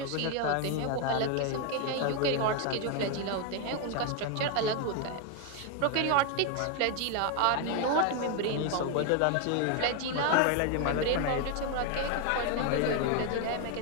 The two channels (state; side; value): different; both; correlation 0.01